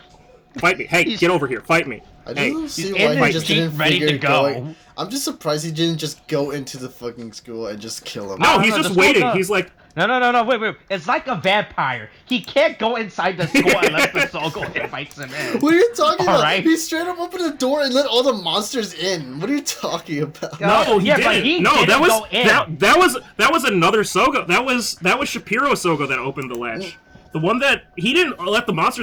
hey, get over here, fight me. I don't see why he just didn't figure going. I'm just surprised he didn't just go into the fucking school and just kill him. No, he's just waiting. He's like, no, wait. It's like a vampire. He can't go inside the school unless the Sougo invites him in. What are you talking about? Right? He straight up opened the door and let all the monsters in. What are you talking about? No, he didn't. That was another Sougo. That was Shapiro Sougo that opened the latch. The one that he didn't let the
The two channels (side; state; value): both; identical; correlation 1.00